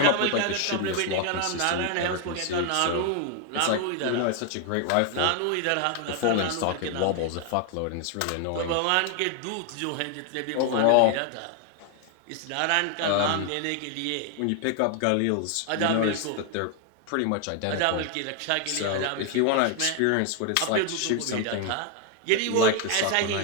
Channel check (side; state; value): both; different; correlation 0.00